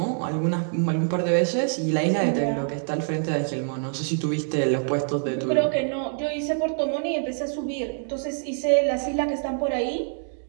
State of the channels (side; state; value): left; silent; digital silence